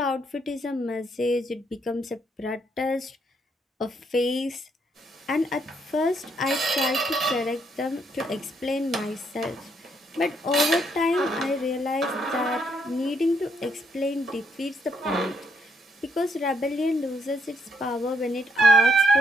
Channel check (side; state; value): both; normal; correlation 0.72